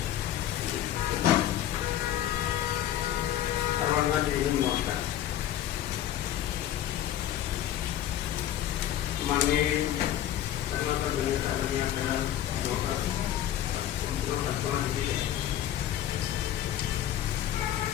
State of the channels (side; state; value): right; quieter; 11.8 dB